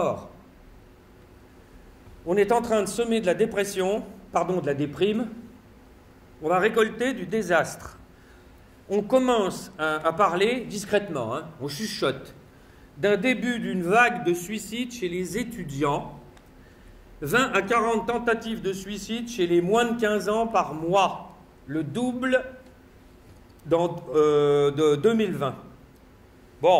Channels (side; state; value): both; identical; correlation 1.00